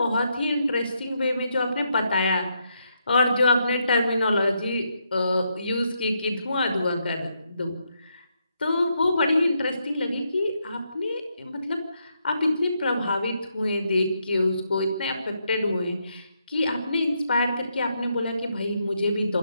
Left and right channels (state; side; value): inverted; both; correlation -0.79